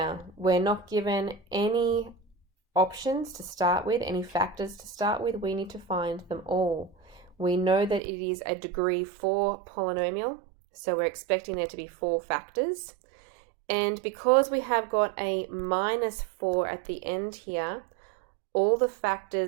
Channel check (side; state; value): left; drops out; at 8.0 s